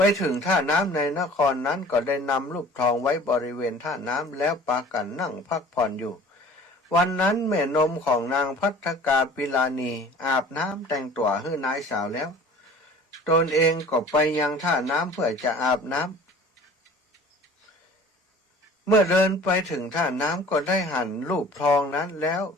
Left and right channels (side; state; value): both; normal; correlation 0.46